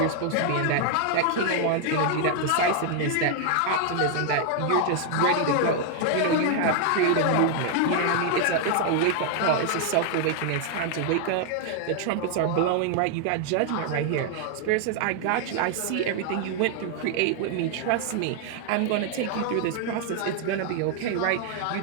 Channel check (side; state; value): both; different; correlation 0.00